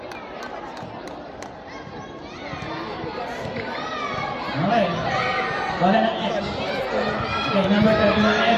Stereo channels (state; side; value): identical; both; correlation 1.00